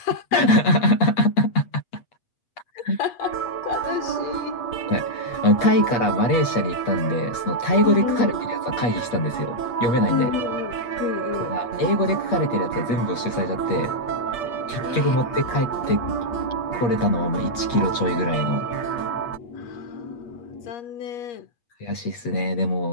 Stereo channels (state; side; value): late; right; 8.4 ms